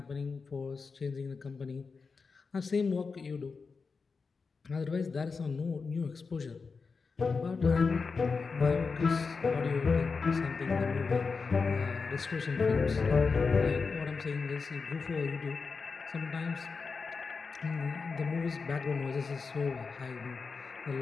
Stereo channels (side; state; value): right; quieter; 4.8 dB